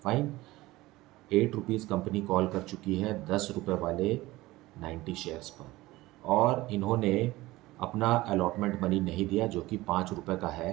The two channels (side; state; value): left; quieter; 18.8 dB